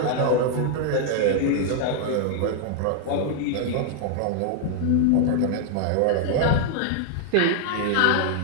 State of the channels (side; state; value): both; different; correlation 0.00